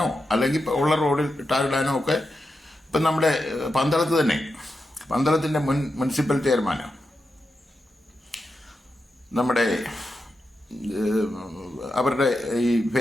അല്ലെങ്കിൽ ഉള്ള റോഡിൽ ടാറിടാനോ ഒക്കെ ഇപ്പം നമ്മുടെ പന്തളത്ത് തന്നെ, പന്തളത്തിൻ്റെ മുനിസിപ്പൽ ചെയർമാനാണ് നമ്മുടെ, അവരുടെ ഈ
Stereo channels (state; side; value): normal; both; correlation 0.88